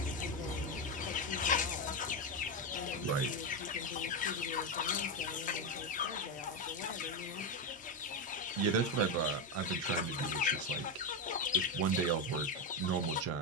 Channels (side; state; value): both; normal; correlation 0.10